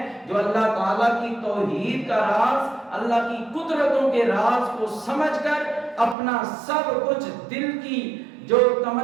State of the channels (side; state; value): left; drops out; at 6.2 s